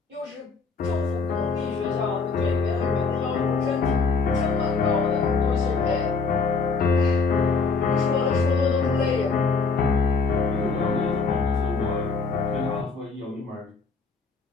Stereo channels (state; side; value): quieter; right; 4.5 dB